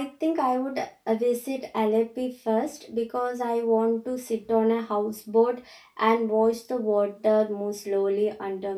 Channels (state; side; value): identical; both; correlation 1.00